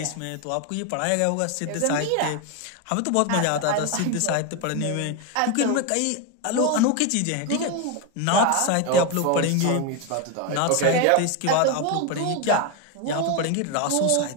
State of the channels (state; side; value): different; both; correlation 0.02